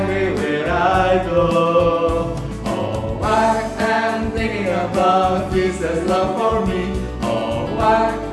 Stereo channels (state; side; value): identical; both; correlation 1.00